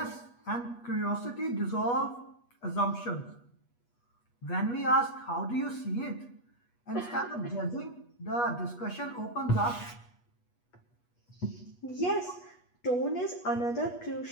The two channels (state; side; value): late; right; 8.3 ms